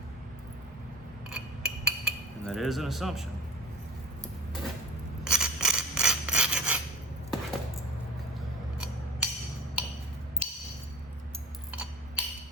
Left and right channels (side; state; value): both; normal; correlation 0.39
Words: And that is an assumption.